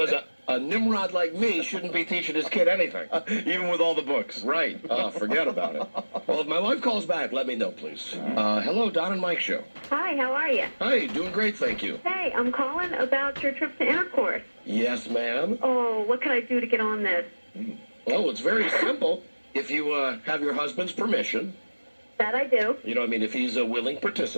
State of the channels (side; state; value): both; inverted; correlation -1.00